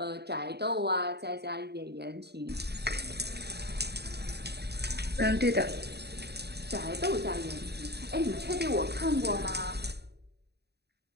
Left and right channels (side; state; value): left; late; 0.48 ms